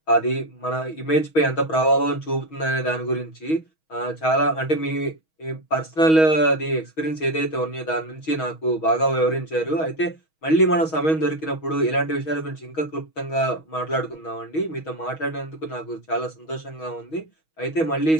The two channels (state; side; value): late; right; 6.3 ms